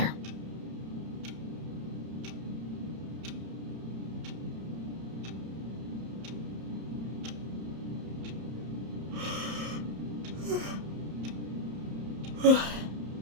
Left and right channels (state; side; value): late; left; 31 ms